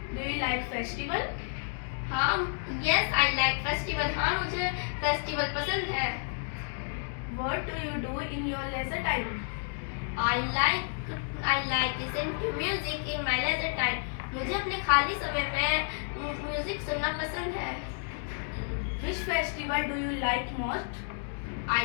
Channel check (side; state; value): right; silent; 57 dB below the other